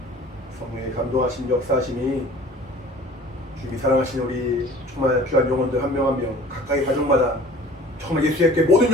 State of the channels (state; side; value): normal; both; correlation 0.45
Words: 성령의 감동하신 역사하심이 주님이 사랑하신 우리 정말 귀한 영혼들 한 명 한 명 각각의 가정마다 정말 예수의 모든